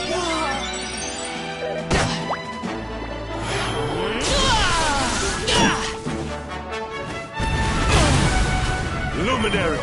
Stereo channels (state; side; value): identical; both; correlation 1.00